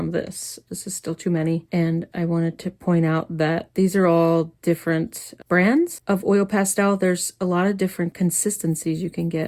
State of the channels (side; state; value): both; identical; correlation 1.00